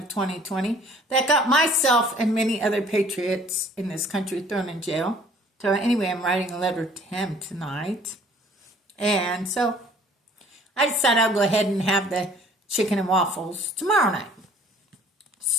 2020 that got myself and many other patriots in this country thrown in jail. So anyway, I'm writing a letter to him tonight. And so I decided I'll go ahead and have the chicken and waffles tomorrow night.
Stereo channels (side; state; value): both; normal; correlation 0.55